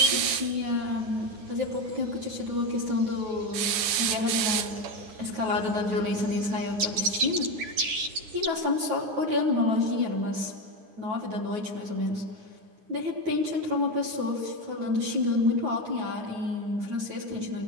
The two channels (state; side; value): late; left; 10 ms